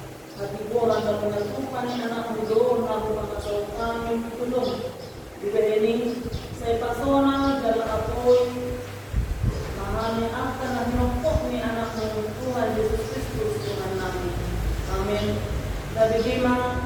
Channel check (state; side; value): identical; both; correlation 1.00